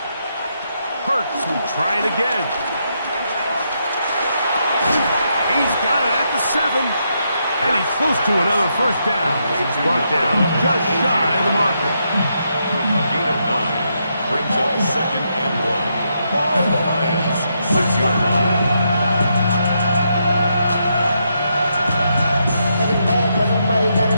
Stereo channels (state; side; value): inverted; both; correlation -0.80